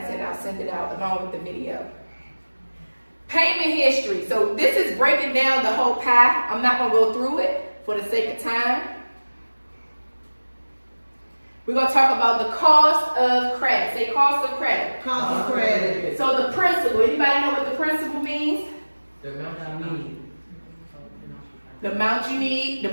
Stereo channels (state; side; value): inverted; both; correlation -1.00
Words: and I'll send it out along with the video. Payment history. So this is breaking down the whole pie. I'm not going to go through it for the sake of time. We're going to talk about the cost of credit. Say cost of credit. Cost of credit. So the principal. Anybody know what the principal means? The amount I need. The amount you need, the